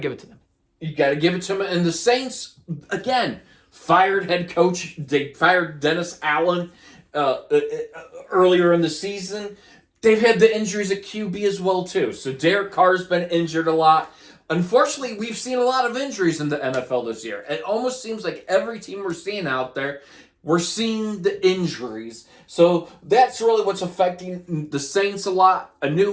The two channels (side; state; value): both; identical; correlation 1.00